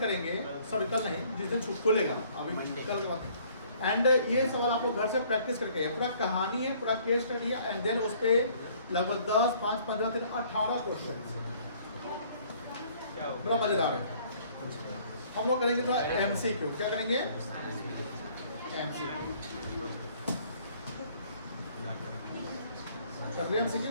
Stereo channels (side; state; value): both; inverted; correlation -0.59